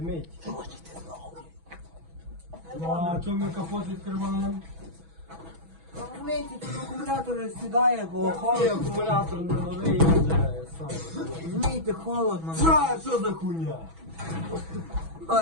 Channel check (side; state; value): left; late; 6.1 ms